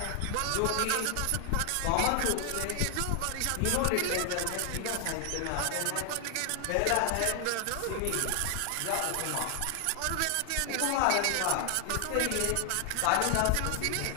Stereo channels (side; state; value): both; different; correlation 0.00